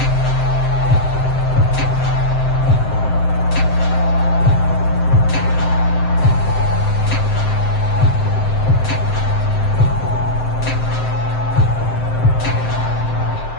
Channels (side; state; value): right; late; 7.7 ms